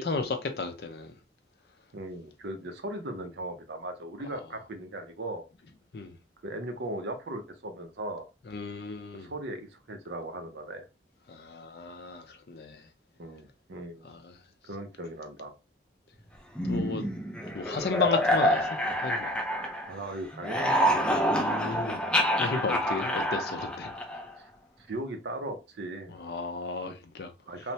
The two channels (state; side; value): normal; both; correlation 0.40